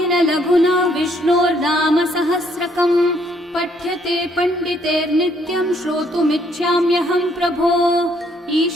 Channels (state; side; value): normal; both; correlation 0.68